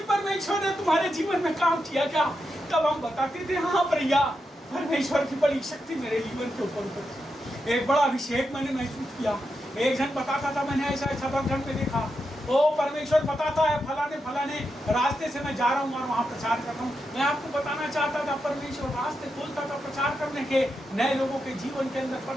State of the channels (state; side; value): normal; both; correlation 0.86